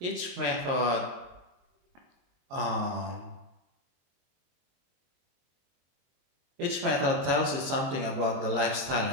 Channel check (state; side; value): late; left; 22 ms